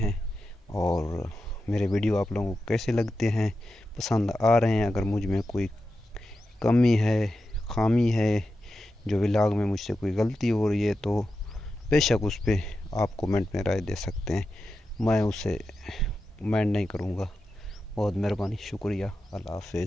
और मेरे वीडियो आप लोगों को कैसे लगते हैं, पसंद आ रहे हैं। अगर मुझ में कोई कमी है, खामी है, जो व्लॉग में मुझसे कोई गलती हो रही है तो बेशक उस पर आप कमेंट में राय दे सकते हैं, मैं उसे माइंड नहीं करूँगा। बहुत मेहरबानी, शुक्रिया। अल्लाह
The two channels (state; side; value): normal; both; correlation 0.91